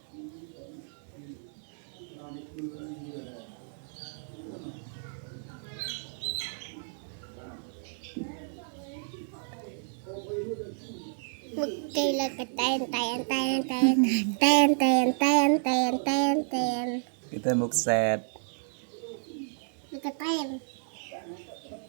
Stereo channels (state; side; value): silent; left; digital silence